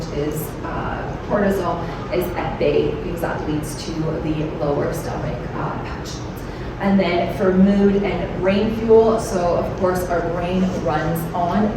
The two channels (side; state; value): both; identical; correlation 1.00